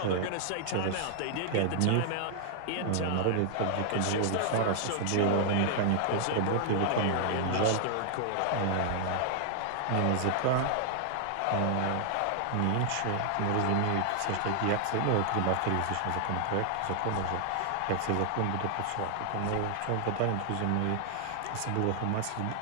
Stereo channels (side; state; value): both; different; correlation -0.01